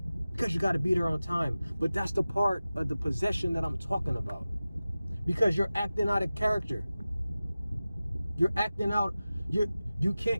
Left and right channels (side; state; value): both; inverted; correlation -0.96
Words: because you got to be there on time. But that's the part of the possession that I'm talking about, because you're acting out of character. You're acting out. You